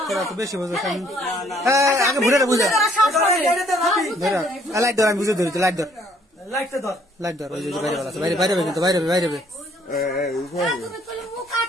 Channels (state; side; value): normal; both; correlation 0.63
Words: তোরা তো বেশি বুঝছ হ্যাঁ আগে বুঝে বুঝে ধর লাইট ধর আমি বুঝে ধরি লাইট ধর লাইটটা ধর লাইট ধর ওই যে বাইরে আছে বাইরে বাইরে কিন্তু বাইরে বাইরে